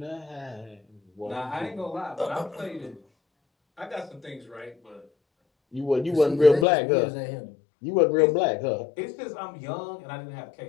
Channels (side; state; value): right; drops out; at 6.7 s